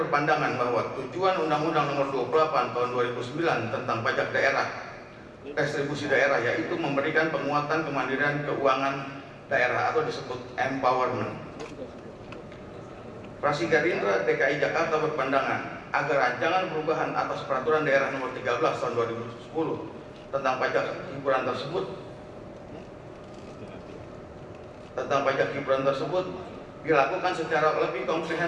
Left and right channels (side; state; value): both; identical; correlation 1.00